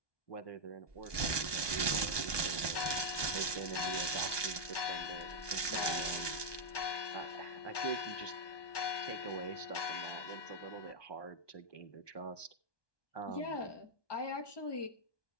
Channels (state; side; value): late; right; 1.2 ms